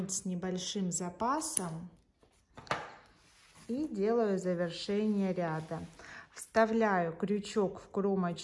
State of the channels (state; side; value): identical; both; correlation 1.00